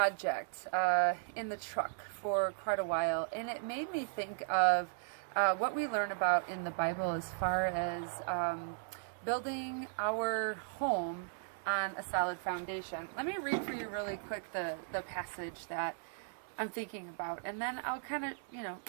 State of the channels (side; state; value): left; silent; 53 dB below the other